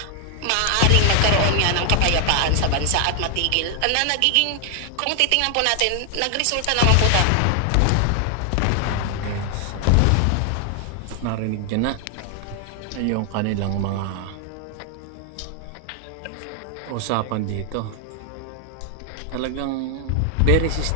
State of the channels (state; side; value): different; both; correlation 0.00